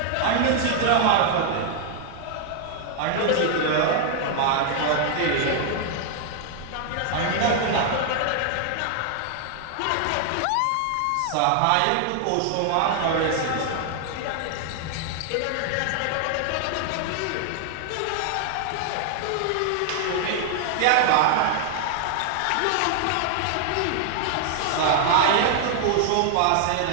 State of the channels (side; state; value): both; different; correlation 0.00